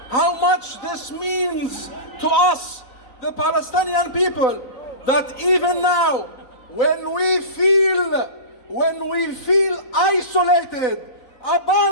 how much this means to us, the Palestinian people, that even now, when we feel isolated,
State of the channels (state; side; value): late; right; 4.0 ms